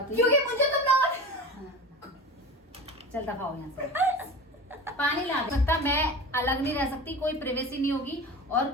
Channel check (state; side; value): normal; both; correlation 0.32